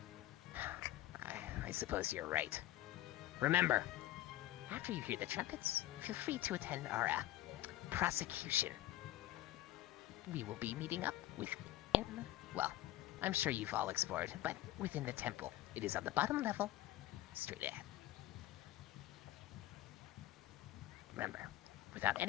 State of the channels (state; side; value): quieter; right; 15.2 dB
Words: I suppose you're right. Remember, after you hear the trumpets, feel free to attend our prosecution. We will be meeting up within, well, I'm sure you've all explored, but within the temple. It is on the bottom level, straight ahead. Remember, without